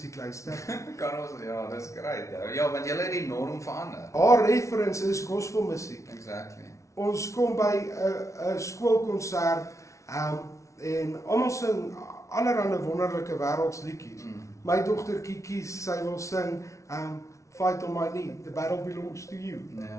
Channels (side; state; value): right; late; 0.14 ms